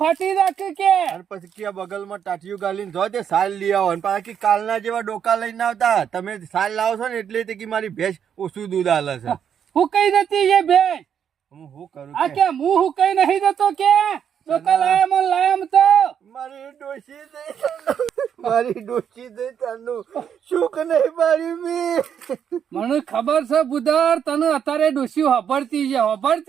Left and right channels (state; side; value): quieter; left; 8.3 dB